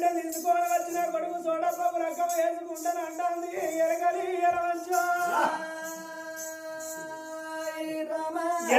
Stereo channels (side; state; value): both; identical; correlation 1.00